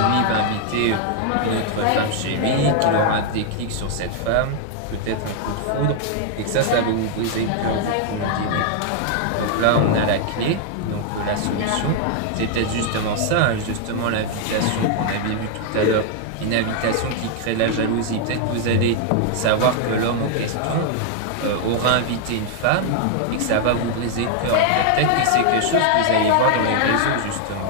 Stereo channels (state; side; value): different; both; correlation 0.00